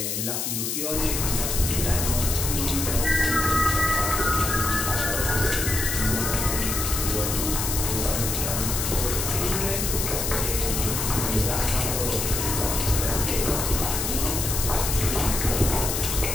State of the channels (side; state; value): left; noise; hiss, 2 dB below the sound